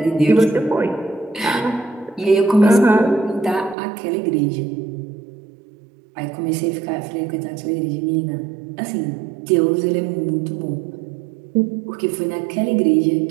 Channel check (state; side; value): drops out; left; at 3.8 s